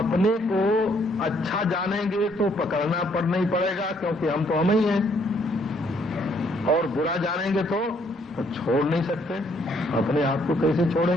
को अच्छा जानेंगे तो पकड़ना पड़ना ही पड़ेगा, क्योंकि हम तो हम ही हैं। और बुरा जानेंगे तो छोड़ नहीं सकते। अपने आप को कैसे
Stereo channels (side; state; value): both; normal; correlation 0.68